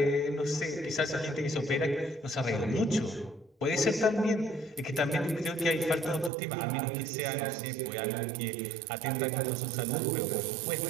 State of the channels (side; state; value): left; drops out; at 6.3 s